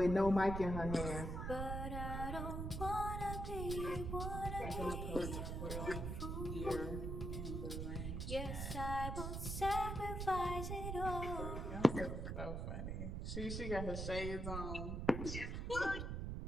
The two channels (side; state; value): right; noise; rumble, 3 dB below the sound